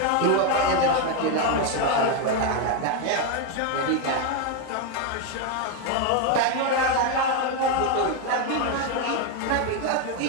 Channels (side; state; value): both; different; correlation 0.02